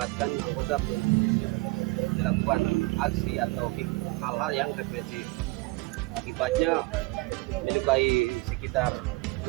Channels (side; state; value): left; quieter; 23.6 dB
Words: anggota melakukan aksi atau hal-hal yang represif. Akibatnya melukai sekitar